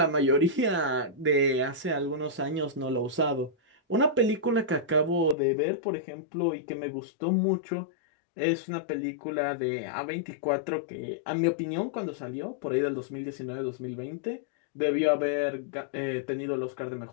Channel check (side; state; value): right; drops out; at 5.4 s